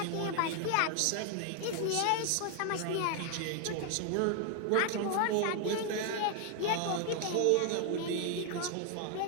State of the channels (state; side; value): different; both; correlation 0.00